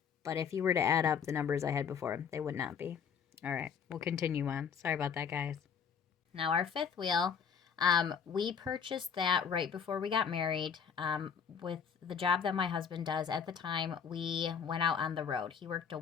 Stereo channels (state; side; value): quieter; right; 6.9 dB